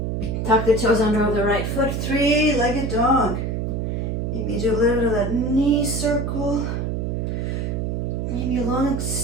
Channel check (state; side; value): noise; right; hum, 1 dB below the sound